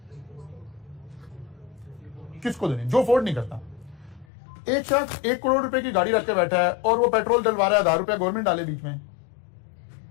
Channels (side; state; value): right; drops out; at 4.2 s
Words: किसको देनी? जो अफोर्ड नहीं करता। एक शख्स 1 करोड़ रुपए की गाड़ी रख के बैठा है और वो पेट्रोल डलवा रहा है, 1000 रुपया गवर्नमेंट डाले बीच में,